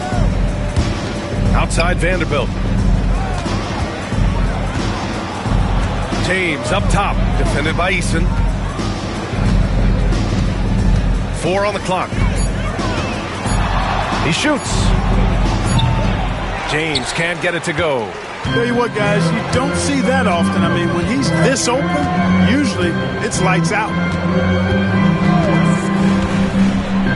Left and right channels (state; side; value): identical; both; correlation 1.00